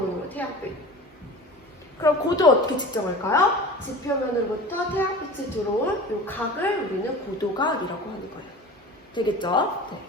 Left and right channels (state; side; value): normal; both; correlation 0.37